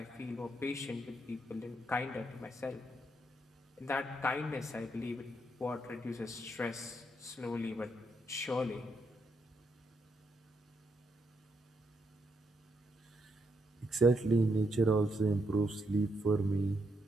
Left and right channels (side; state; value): both; normal; correlation 0.78